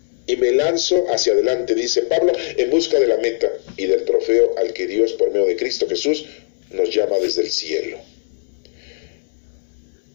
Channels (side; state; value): right; silent; 66 dB below the other